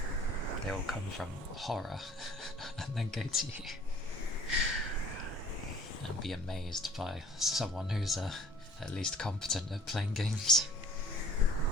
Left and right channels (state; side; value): normal; both; correlation 0.51